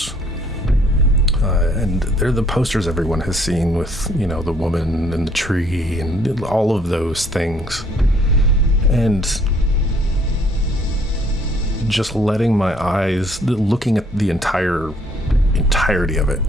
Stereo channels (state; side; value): normal; both; correlation 0.63